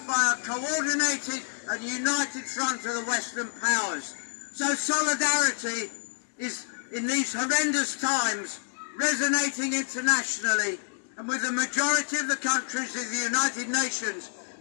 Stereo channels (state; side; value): silent; right; digital silence